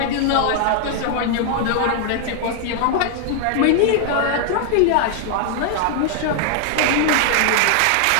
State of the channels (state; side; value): different; both; correlation 0.00